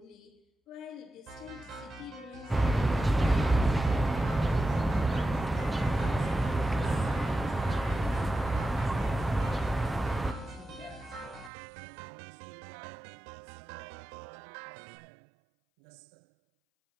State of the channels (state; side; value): drops out; left; at 11.5 s